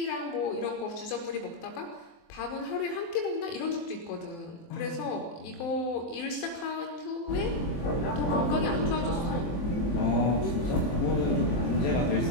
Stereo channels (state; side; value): late; right; 24 ms